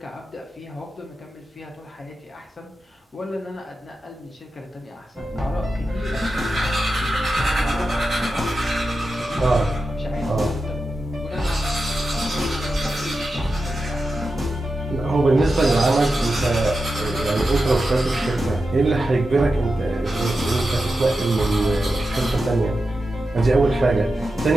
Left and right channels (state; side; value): normal; both; correlation 0.91